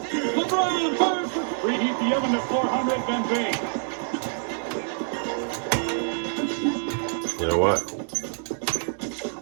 LeBron fires for preheat the oven to 400, then bake. You know what?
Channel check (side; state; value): left; silent; digital silence